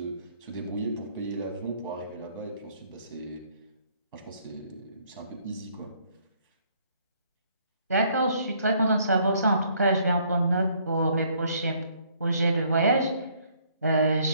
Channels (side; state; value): both; inverted; correlation -0.65